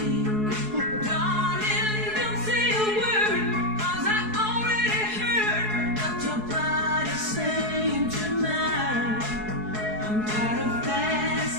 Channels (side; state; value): left; late; 4.7 ms